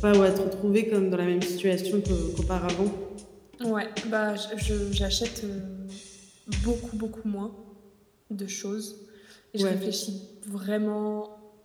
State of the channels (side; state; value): both; identical; correlation 1.00